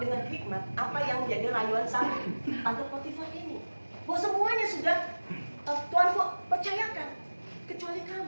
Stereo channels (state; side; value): inverted; both; correlation -1.00